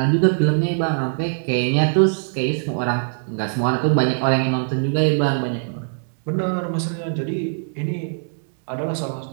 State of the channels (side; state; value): left; silent; digital silence